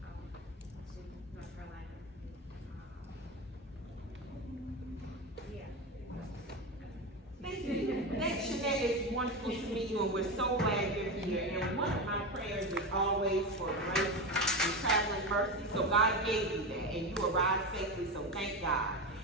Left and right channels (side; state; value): both; normal; correlation 0.19